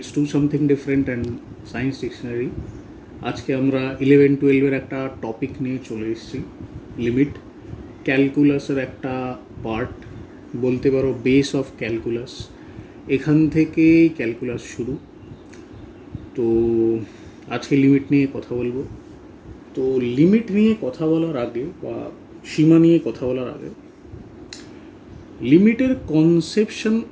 Do Something Different and Science Dictionary. আজকে আমরা 11-12 একটা topic নিয়ে চলে এসেছি, লিমিট। ক্যালকুলাসের একটা পার্ট, বলতে পারো বেস অফ ক্যালকুলাস। এখান থেকেই ক্যালকুলাস শুরু। তো আজকে লিমিট নিয়ে কথা বলবো। তো লিমিট নিয়ে কথা বলার আগে বা সীমা নিয়ে কথা বলার আগে, লিমিটের কনসেপশন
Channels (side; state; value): both; identical; correlation 1.00